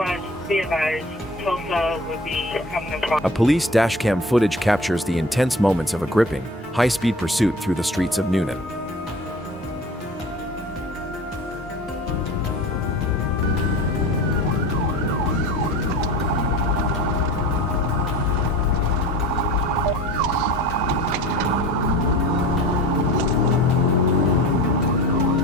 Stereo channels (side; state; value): both; normal; correlation 0.39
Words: be advised, Tulsa would be coming across. A police dashcam footage captures the intense moments of a gripping, high-speed pursuit through the streets of Noonan.